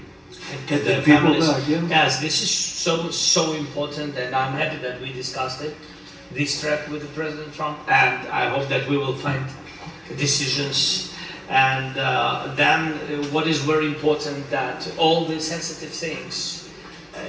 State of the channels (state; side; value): identical; both; correlation 1.00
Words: Get the people back, yeah. Yes, this is so important, and I'm happy that we discussed it, this track with the President Trump, and I hope that we will find decisions. And then what is very important, that all the sensitive things,